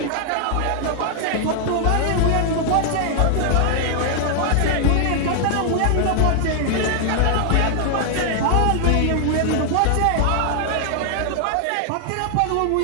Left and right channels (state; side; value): different; both; correlation 0.00